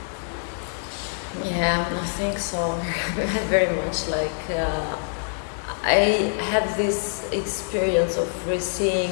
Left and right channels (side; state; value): right; silent; digital silence